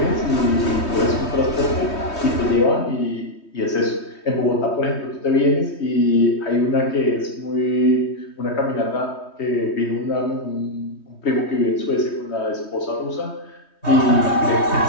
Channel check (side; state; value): right; late; 3.2 ms